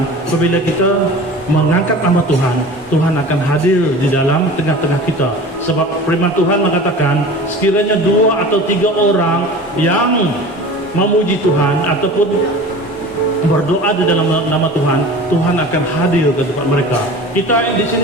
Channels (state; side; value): normal; both; correlation 0.38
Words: apabila kita mengangkat nama Tuhan, Tuhan akan hadir di dalam tengah-tengah kita. Sebab firman Tuhan mengatakan, sekiranya 2 atau 3 orang yang memuji Tuhan ataupun berdoa di dalam nama Tuhan, Tuhan akan hadir ke tempat mereka. Kita di